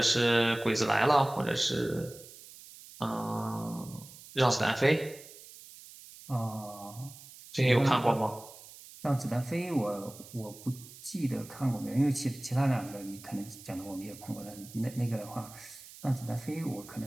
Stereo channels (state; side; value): noise; right; hiss, 18 dB below the sound